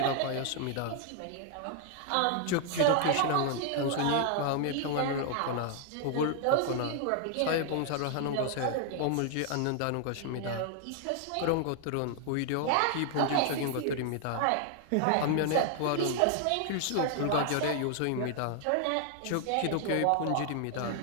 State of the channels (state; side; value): different; both; correlation 0.00